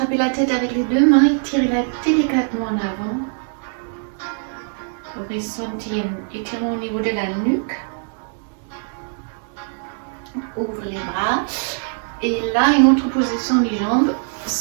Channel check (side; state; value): left; silent; 65 dB below the other